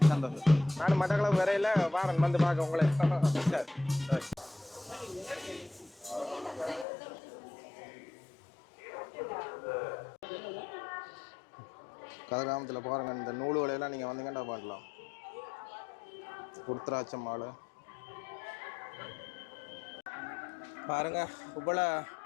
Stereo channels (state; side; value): drops out; right; at 6.9 s